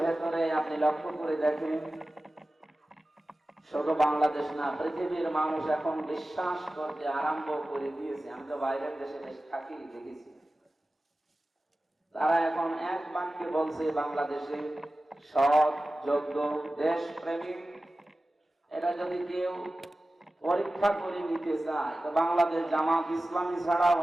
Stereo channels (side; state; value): both; normal; correlation 0.95